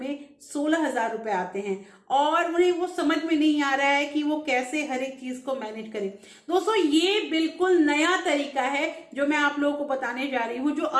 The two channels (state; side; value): identical; both; correlation 1.00